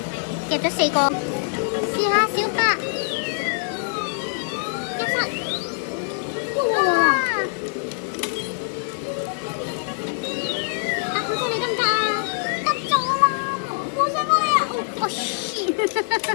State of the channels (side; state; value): right; silent; 63 dB below the other